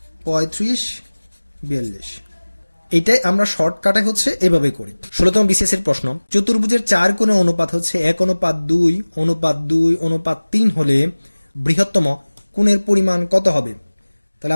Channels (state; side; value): inverted; both; correlation -1.00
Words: 35 42। এইটাই আমরা শর্টকাটে হচ্ছে এভাবে করি। 16তম বিসিএস এর প্রশ্ন, চতুর্ভুজের 4 কোণের অনুপাত হচ্ছে 1:2:2:3 হলে বৃহত্তম কোণের পরিমাণ কত হবে? তাহলে